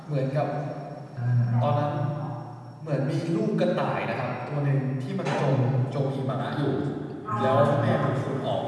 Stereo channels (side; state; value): both; identical; correlation 1.00